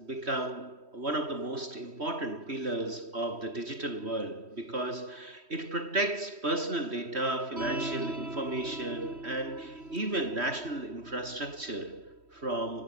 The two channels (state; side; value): late; left; 3.1 ms